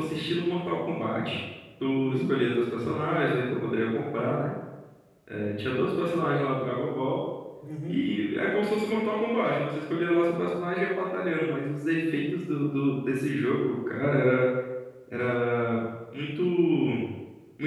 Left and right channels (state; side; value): identical; both; correlation 1.00